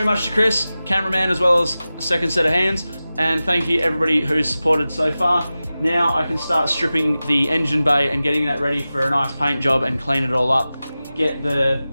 much to Chris, cameraman, as well as the second set of hands, and thank you everybody who's supported so far. Now I can start stripping the engine bay and getting that ready for a nice paint job and clean it all up. Get the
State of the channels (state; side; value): inverted; both; correlation -0.95